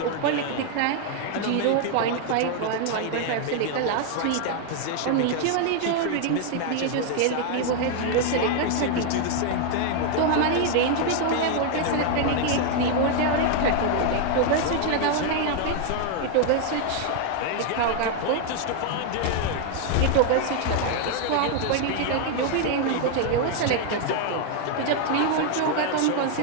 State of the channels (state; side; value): different; both; correlation 0.00